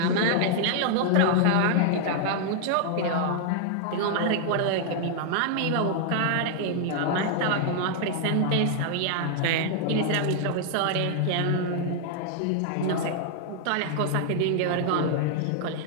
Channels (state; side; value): different; both; correlation 0.00